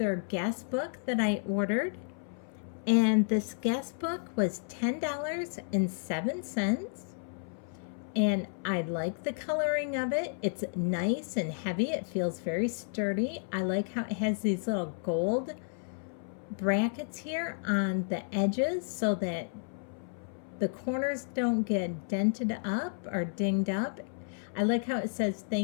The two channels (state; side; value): silent; right; 57 dB below the other